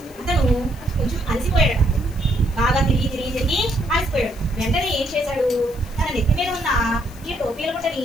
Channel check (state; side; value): noise; left; hiss, 23 dB below the sound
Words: అతను కొంచెం అలసిపోయాడట. బాగా తిరిగి అలసిపోయాడు. వెంటనే ఏం చేశాడు? తన నెత్తి మీద ఉన్న ఈ టోపీల బుట్టని